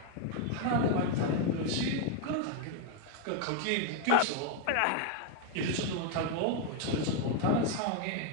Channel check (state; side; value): different; both; correlation 0.00